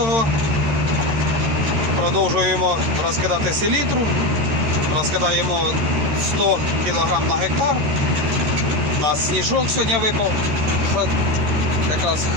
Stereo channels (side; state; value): left; late; 14 ms